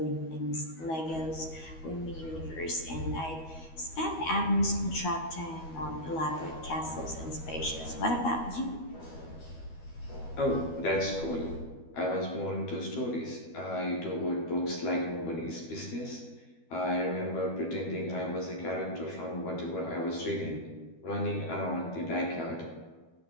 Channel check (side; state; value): right; late; 12 ms